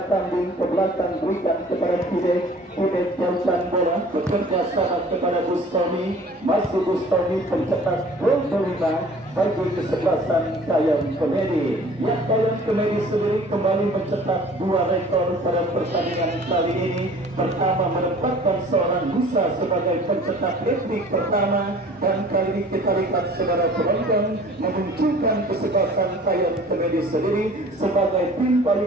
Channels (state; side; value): normal; both; correlation 0.48